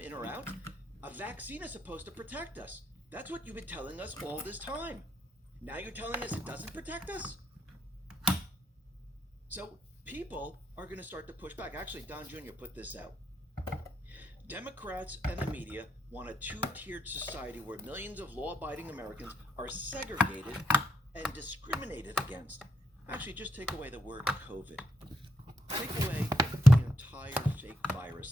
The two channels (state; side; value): normal; both; correlation 0.79